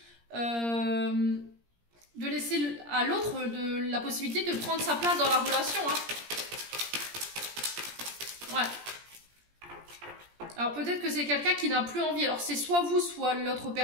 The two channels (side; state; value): left; late; 17 ms